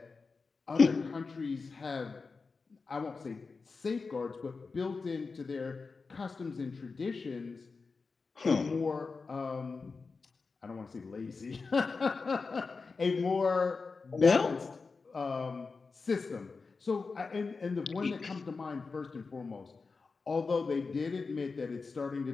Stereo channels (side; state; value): right; quieter; 4.4 dB